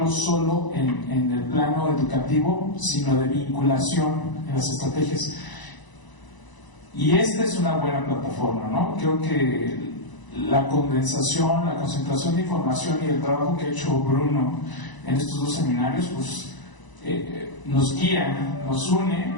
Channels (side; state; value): right; late; 1.0 ms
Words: solo en el plano educativo, sino de vinculación en las estrategias. Y esta es una buena plataforma, ¿no? Creo que la condensación, la concentración de información y el trabajo que ha hecho Bruno en estos 2 seminarios, pues nos guía, nos une,